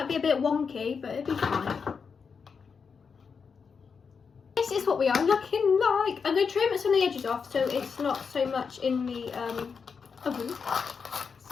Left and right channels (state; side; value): quieter; right; 5.8 dB